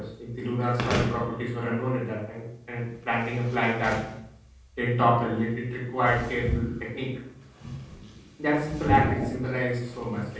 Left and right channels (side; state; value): both; identical; correlation 1.00